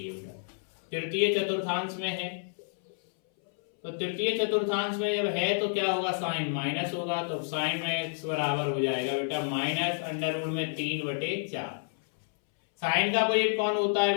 है। तृतीय चतुर्थांश में है, तो तृतीय चतुर्थांश में जब है तो क्या होगा साइन माइनस होगा, तो साइन में x बराबर हो जाएगा बेटा माइनस अंडर रूट में 3/4। साइन का अपोजिट कौन होता है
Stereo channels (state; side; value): silent; right; 58 dB below the other